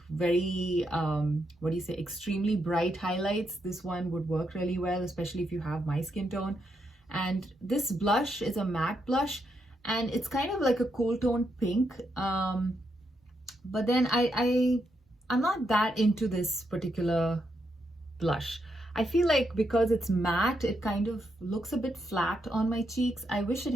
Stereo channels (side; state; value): both; normal; correlation 0.80